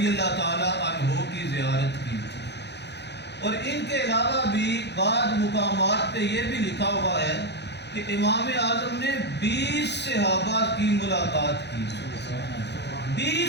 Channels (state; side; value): late; right; 0.50 ms